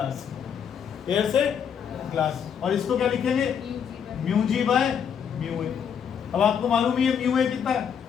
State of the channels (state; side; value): quieter; right; 7.7 dB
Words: एयर से ग्लास। और इसको क्या लिखेंगे, mu g by mu a. अब आपको मालूम ही है म्यू ए कितना है,